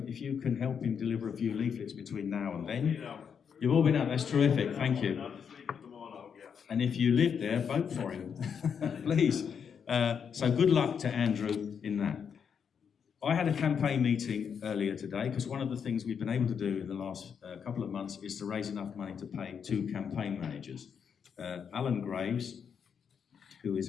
if you can help him deliver a few leaflets between now and then. You've all been out, that's terrific, thank you. And if you live there, vote for him, please. So good luck to Andrew in that. I had a campaign meeting earlier today, because one of the things we've been able to do in the last couple of months is to raise enough money to pay 2 campaign managers. Alan Graves, who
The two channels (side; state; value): right; quieter; 7.1 dB